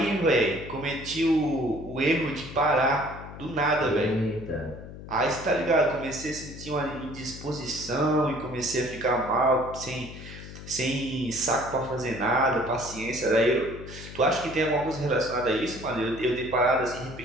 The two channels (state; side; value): noise; left; hum, 13 dB below the sound